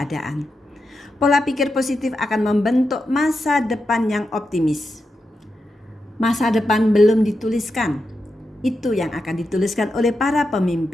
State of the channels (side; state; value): both; normal; correlation 0.88